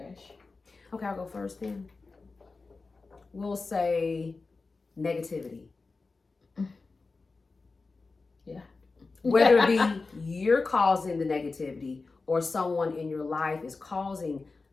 Okay, I'll go first then. We'll say negativity. Yeah. Whether it be you're causing the negativity or someone in your life is causing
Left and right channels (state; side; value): quieter; right; 3.9 dB